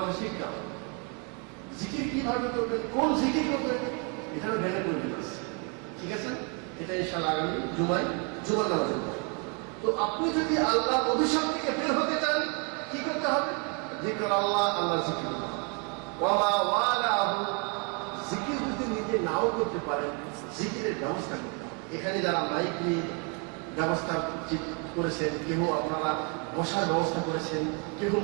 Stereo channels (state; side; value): quieter; left; 35.9 dB